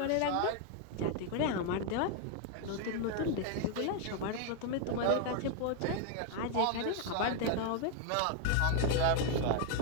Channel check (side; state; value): both; different; correlation 0.00